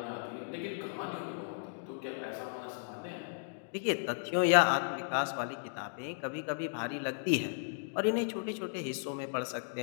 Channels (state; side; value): silent; right; digital silence